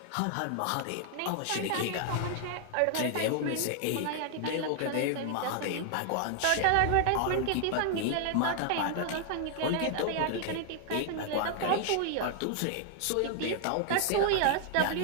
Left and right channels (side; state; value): both; different; correlation 0.00